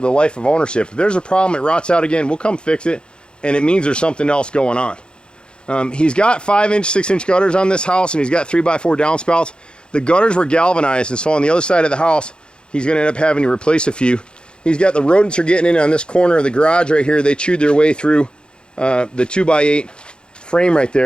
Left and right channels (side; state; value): right; late; 0.052 ms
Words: life of ownership. If there's a problem, it rots out again, we'll come fix it. And it means there's something else going on. He's got 5-inch, 6-inch gutters on this house, and he's got 3x4 downspouts. The gutters were galvanized, and so on the other side of the house, he's going to end up having to replace a few. He's got the rodents are getting in on this corner of the garage right here. They chewed their way through the 2x8 frame right